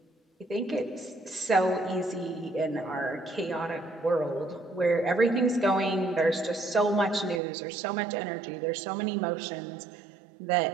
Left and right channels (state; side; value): drops out; left; at 7.4 s